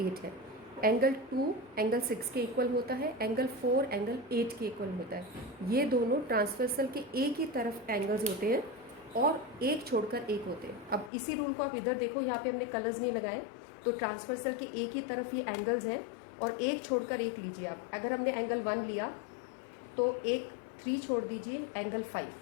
है। एंगल 2 एंगल 6 के इक्वल होता है, एंगल 4 एंगल 8 के इक्वल होता है। ये दोनों ट्रांसवर्सल के एक ही तरफ एंगल्स होते हैं और एक छोड़कर एक होते हैं। अब इसी रूल को आप इधर देखो, यहाँ पे हमने कलर्स नहीं लगाए, तो ट्रांसवर्सल के एक ही तरफ ये एंगल्स हैं और एक छोड़कर एक लीजिए आप। अगर हमने एंगल 1 लिया तो एक 3 छोड़ दीजिए, एंगल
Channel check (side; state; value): right; drops out; at 11.1 s